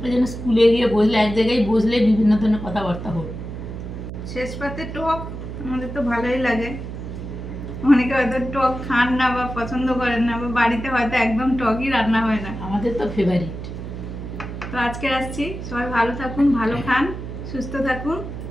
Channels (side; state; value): right; noise; hum, 8 dB below the sound